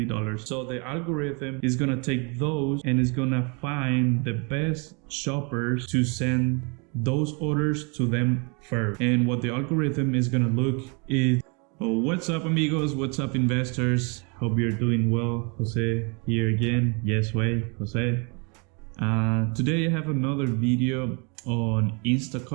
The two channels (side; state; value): left; quieter; 33.4 dB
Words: So the algorithm is gonna take those and is gonna find the best shoppers to send those orders to them first. And what the algorithm is gonna look is, oh, what's up amigos, what's up investors? Hope you're doing well. Jose here again. Yes way, Jose. Today I have another video on